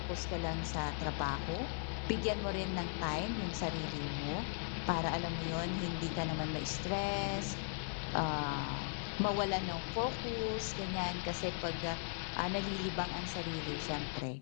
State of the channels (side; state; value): right; silent; 52 dB below the other